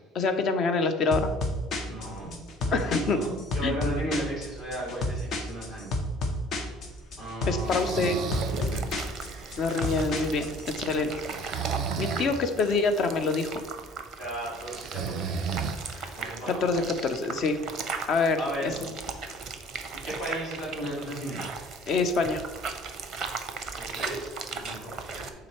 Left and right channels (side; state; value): both; normal; correlation 0.51